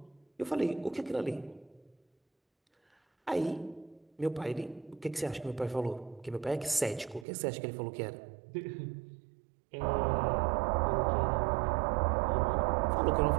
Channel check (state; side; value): drops out; left; at 7.2 s